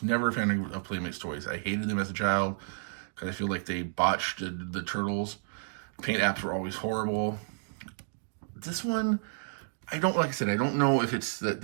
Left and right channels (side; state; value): left; silent; digital silence